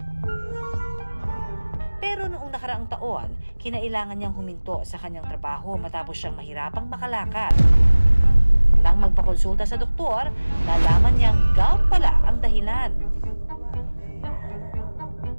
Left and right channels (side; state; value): both; inverted; correlation -1.00